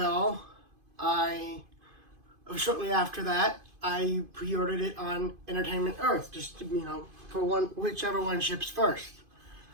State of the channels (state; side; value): late; left; 2.5 ms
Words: shortly after that, I pre-ordered it on Entertainment Earth, just to, for whichever one ships first.